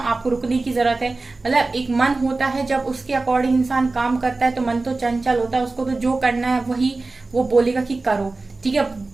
रुकने की जरूरत है। मतलब एक मन होता है, जब उसके अकॉर्डिंग इंसान काम करता है तो मन तो चंचल होता है, उसको तो जो करना है वही वो बोलेगा कि करो, ठीक है,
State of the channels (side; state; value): left; quieter; 3.4 dB